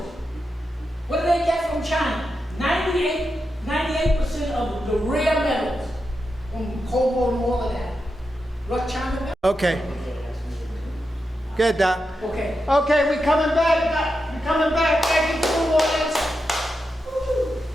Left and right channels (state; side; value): normal; both; correlation 0.88